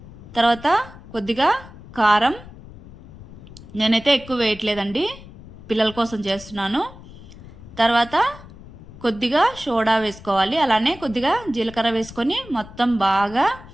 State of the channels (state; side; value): noise; left; rumble, 18 dB below the sound